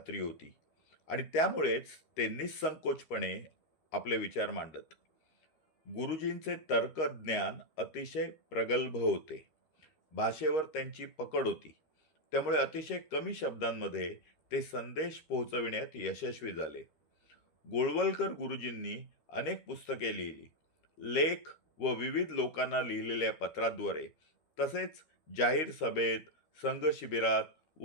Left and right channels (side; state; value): right; late; 13 ms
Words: होती आणि त्यामुळेच ते निःसंकोचपणे आपले विचार मांडत. गुरुजींचे तर्कज्ञान अतिशय प्रगल्भ होते. भाषेवर त्यांची पकड होती. त्यामुळे अतिशय कमी शब्दांमध्ये ते संदेश पोहोचविण्यात यशस्वी झाले. गोळवलकर गुरुजींनी अनेक पुस्तके लिहिली. लेख व विविध लोकांना लिहिलेल्या पत्राद्वारे, तसेच जाहीर सभेत, संघ शिबिरात